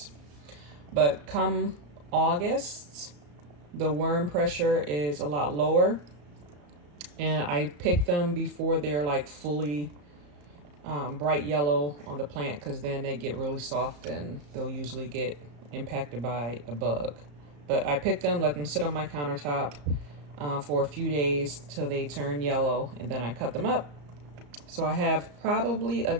But come August, the worm pressure is a lot lower, and I pick them before they're like fully bright yellow on the plant, because then they get really soft and they'll usually get impacted by a bug. But I pick them, let them sit on my countertop for a few days till they turn yellow, and then I cut them up. So I have probably a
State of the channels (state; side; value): late; left; 34 ms